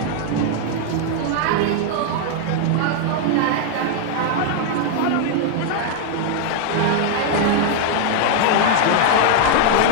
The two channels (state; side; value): different; both; correlation 0.00